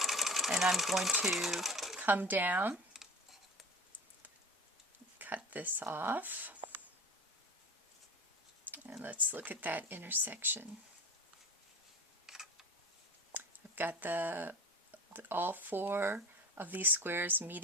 and I'm going to come down, cut this off, and let's look at that intersection. I've got all 4 of these squares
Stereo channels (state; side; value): normal; both; correlation 0.35